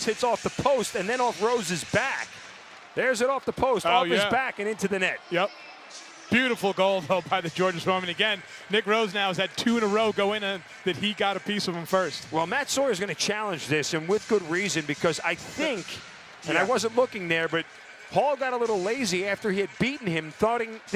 hits off the post, and then off Rose's back. There's it off the post, off his back and into the net. Yep. Beautiful goal, though, by the Georgia Swarm. And again, Nick Rose now has had 2 in a row go in and that he got a piece of him first. Well, Matt Sawyer is going to challenge this, and with good reason, because I think, and I wasn't looking there, but Hall got a little lazy after he had beaten him,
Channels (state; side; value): identical; both; correlation 1.00